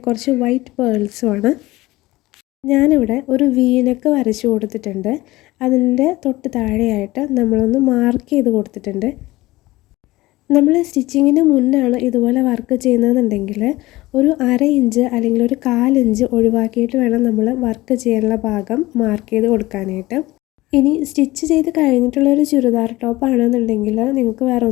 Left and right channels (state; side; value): quieter; right; 19.0 dB